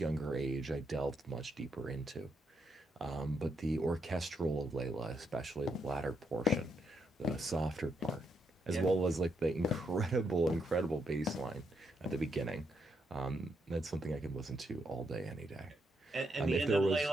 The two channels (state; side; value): normal; both; correlation 0.78